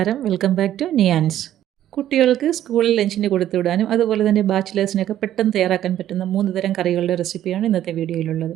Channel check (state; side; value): quieter; left; 11.9 dB